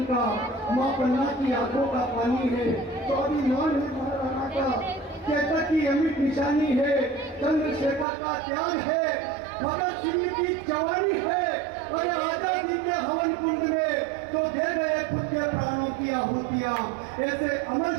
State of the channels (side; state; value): left; drops out; at 8.1 s